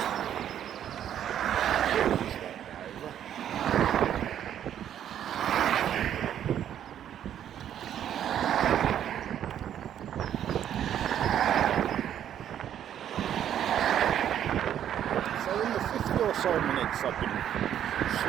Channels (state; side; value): quieter; left; 10.2 dB